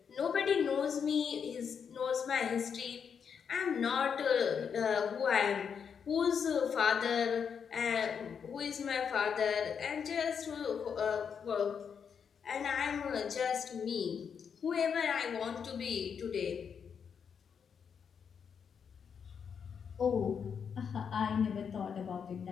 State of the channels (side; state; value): right; quieter; 6.9 dB